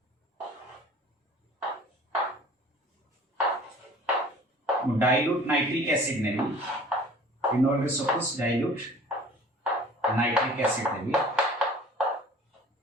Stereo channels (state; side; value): normal; both; correlation 0.46